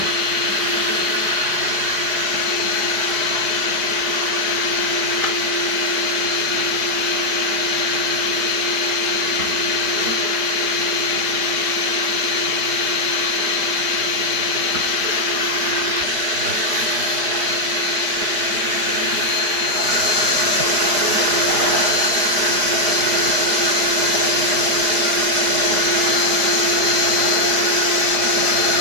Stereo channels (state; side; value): late; left; 4.8 ms